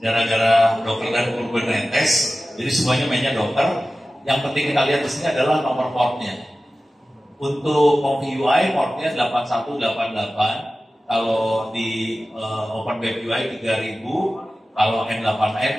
Docker dan Kubernetes. Jadi semuanya mainnya Docker. Yang penting kita lihat di sini adalah nomor portnya. Untuk ComfyUI portnya 8188. Kalau di OpenWebUI 3000, kalau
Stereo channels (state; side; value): normal; both; correlation 0.95